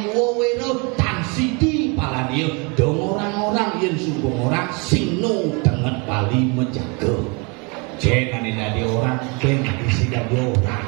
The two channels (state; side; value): quieter; left; 30.8 dB